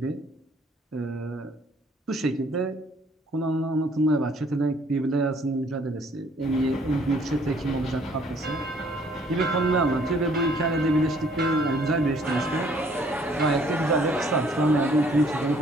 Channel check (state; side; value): normal; both; correlation 0.61